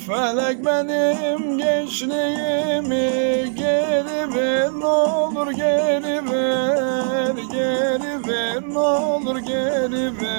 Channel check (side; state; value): left; silent; 65 dB below the other